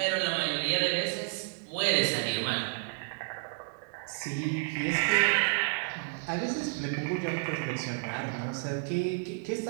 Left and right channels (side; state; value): left; silent; 57 dB below the other